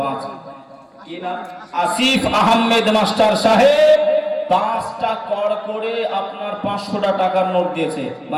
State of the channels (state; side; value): identical; both; correlation 1.00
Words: কি নাম? আসিফ আহমেদ মাস্টার সাহেব 5টা কড় করে আপনার 500 টাকার নোট দিয়েছে,